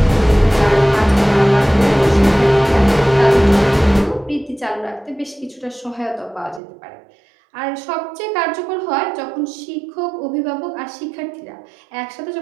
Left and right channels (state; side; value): drops out; left; at 6.6 s